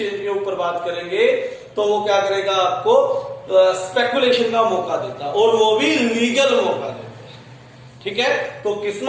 के ऊपर बात करेंगे तो वो क्या करेगा, आपको स्पेकुलेशन का मौका देता, और वो भी लीगल मौका देता। ठीक है, तो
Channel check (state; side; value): identical; both; correlation 1.00